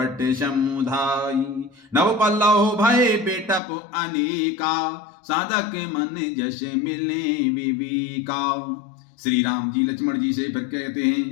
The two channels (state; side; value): drops out; right; at 3.6 s